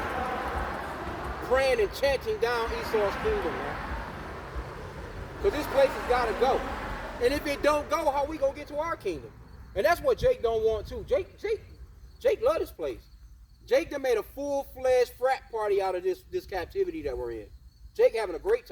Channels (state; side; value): identical; both; correlation 1.00